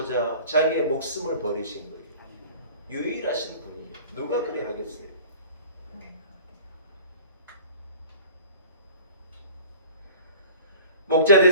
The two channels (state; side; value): inverted; both; correlation -0.44